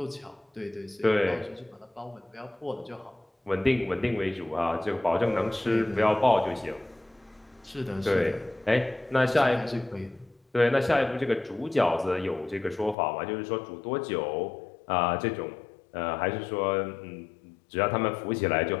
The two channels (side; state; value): right; drops out; at 13.0 s